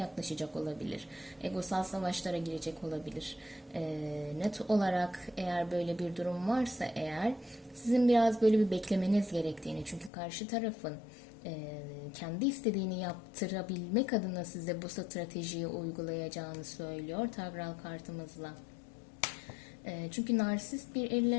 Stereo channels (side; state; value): right; drops out; at 10.1 s